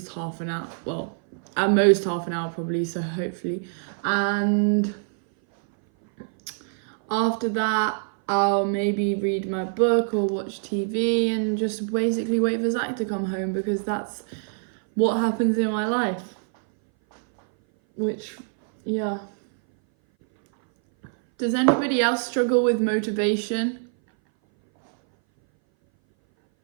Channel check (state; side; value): silent; left; 59 dB below the other